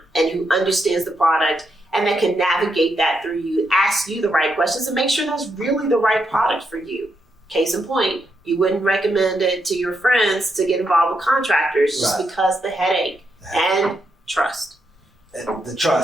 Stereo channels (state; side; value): normal; both; correlation 0.81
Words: and who understands the product and that can navigate that through you, ask you the right questions, and make sure that's really the right product for you. Case in point, you wouldn't recommend it to your friends to get involved with contractors just because the headache and trust. The